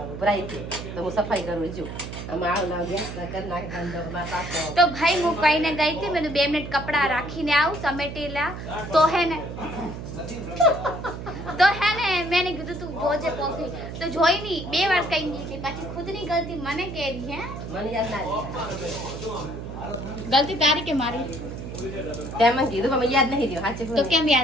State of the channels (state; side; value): noise; right; hum, 8 dB below the sound